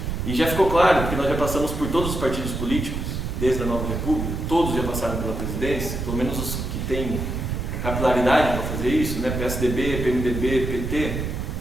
E já ficou claro, porque nós já passamos por todos os partidos políticos, desde a Nova República, todos já passaram pela presidência, pelo menos os que têm capilaridade para fazer isso, né? PSDB, PMDB, PT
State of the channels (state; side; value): noise; right; rumble, 3 dB below the sound